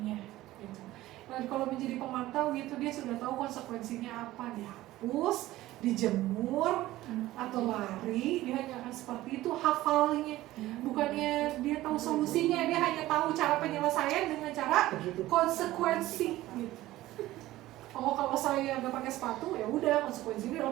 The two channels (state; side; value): quieter; left; 16.3 dB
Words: Gitu. Dan kalau menjadi pemantau gitu, dia sudah tahu konsekuensinya apa, dihapus, dijemur, atau lari. Dia hanya akan seperti itu hafalnya. Bukannya dia tahu solusinya, dia hanya tahu cara penyelesaian dengan cara konsekuensi. Gitu. Oh kalau saya nggak pakai sepatu ya udah konsekuensinya